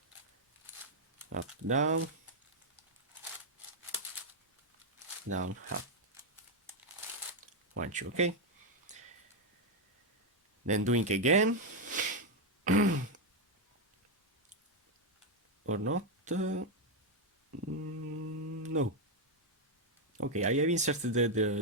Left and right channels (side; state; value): both; normal; correlation 0.01